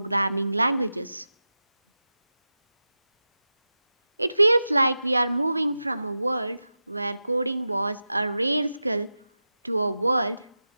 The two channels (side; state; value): both; inverted; correlation -0.94